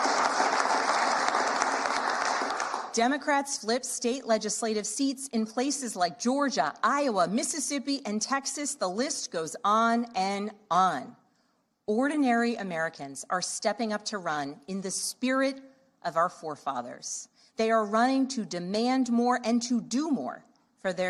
Democrats flipped state legislative seats in places like Georgia, Iowa, Mississippi, and Texas. The list goes on and on. Ordinary Americans are stepping up to run in the spirit of our forefathers. They are running to demand more and to do more for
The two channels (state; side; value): identical; both; correlation 1.00